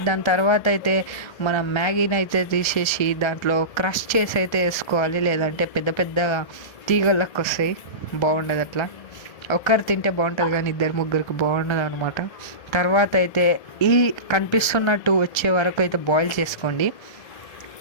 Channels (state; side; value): late; right; 1.3 ms